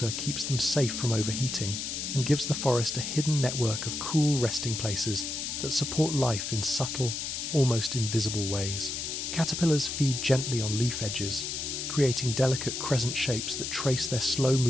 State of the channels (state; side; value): noise; left; hiss, 4 dB below the sound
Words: keeps them safe from overheating and gives the forest a hidden network of cool resting places that support life in subtle, almost invisible ways. Caterpillars feed gently on leaf edges, creating delicate crescent shapes that trace their slow